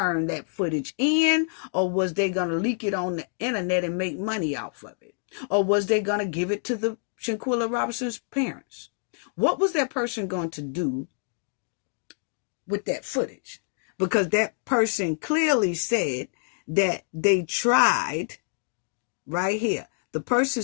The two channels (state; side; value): silent; right; digital silence